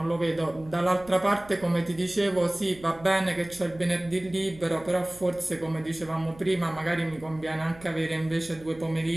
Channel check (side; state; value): right; noise; hum, 21 dB below the sound